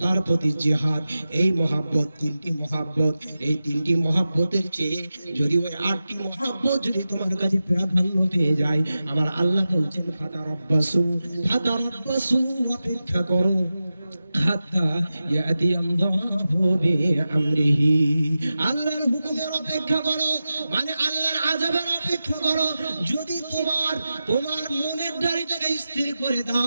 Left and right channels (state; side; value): inverted; both; correlation -0.93